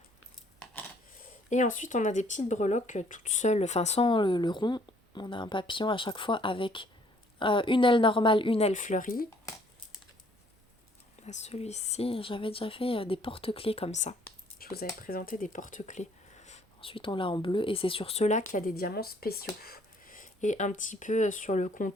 Et ensuite, on a des petites breloques toutes seules, enfin sans le rond. On a un papillon à chaque fois avec une aile normale, une aile fleurie. On a celui-ci. J'avais déjà fait des porte-clés comme ça. vous avais présenté des porte-clés. Ensuite, on l'a en bleu et c'est sur ceux-là qu'il y a des diamants spéciaux. Et un petit peu sur le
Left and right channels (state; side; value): normal; both; correlation 0.62